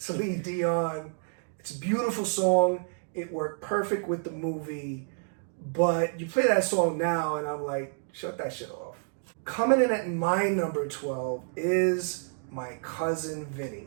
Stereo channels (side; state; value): left; silent; digital silence